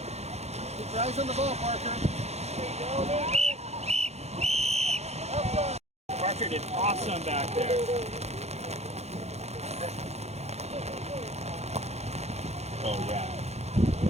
your eyes on the ball, Parker. Parker did awesome back there. Oh, yeah.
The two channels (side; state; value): left; late; 0.31 ms